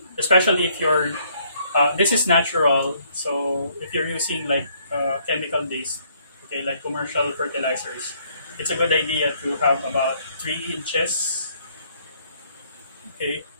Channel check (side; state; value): both; inverted; correlation -0.67